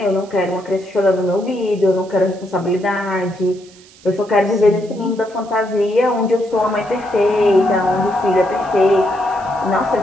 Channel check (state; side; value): noise; right; hiss, 25 dB below the sound